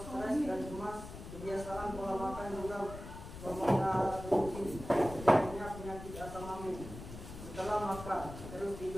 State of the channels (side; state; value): left; noise; rumble, 11 dB below the sound